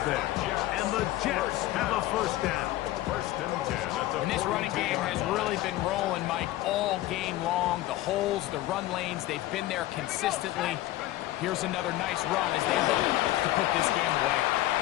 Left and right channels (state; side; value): quieter; right; 15.8 dB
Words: there. And the Jets have a first down. First and 10 at the And this running game has really been rolling, Mike, all game long. The holes, the run lanes, they've been there consistently. Here's another nice run as they look to put this game away.